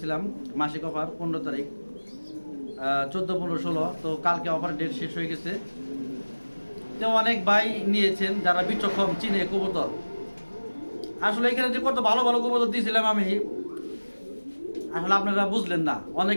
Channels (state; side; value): inverted; both; correlation -1.00